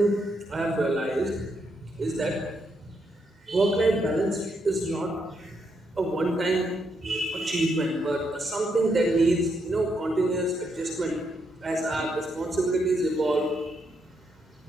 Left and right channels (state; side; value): normal; both; correlation 0.78